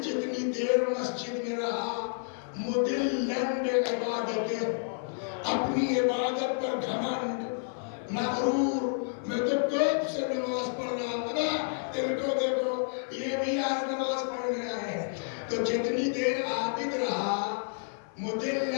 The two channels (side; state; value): right; silent; 55 dB below the other